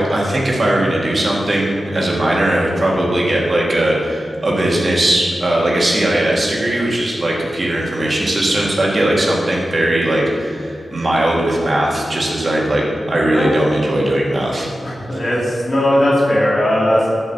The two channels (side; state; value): both; normal; correlation 0.92